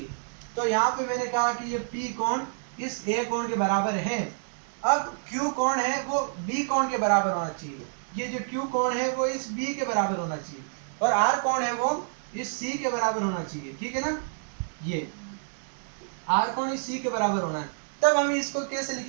तो यहाँ पे मैंने कहा कि ये पी कोण इस ए कोण के बराबर है। अब क्यू कोण है वो बी कोण के बराबर होना चाहिए, ये जो क्यू कोण है वो इस बी के बराबर होना चाहिए, और आर कोण है वो इस सी के बराबर होना चाहिए। ठीक है ना, ये आर कोण इस सी के बराबर होना है। तब हम इसको कैसे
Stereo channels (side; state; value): left; silent; digital silence